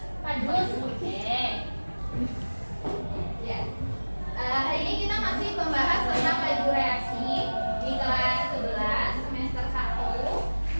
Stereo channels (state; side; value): inverted; both; correlation -1.00